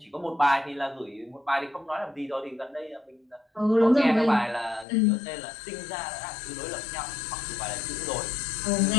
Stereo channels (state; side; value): drops out; right; at 4.9 s